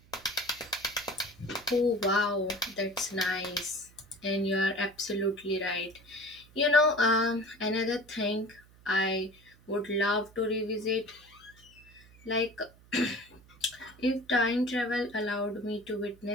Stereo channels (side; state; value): right; noise; hum, 25 dB below the sound